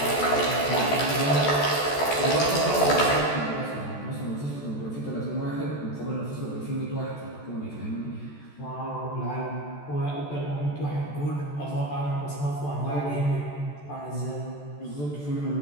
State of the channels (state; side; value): late; right; 14 ms